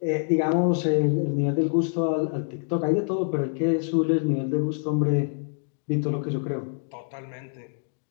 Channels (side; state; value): right; silent; digital silence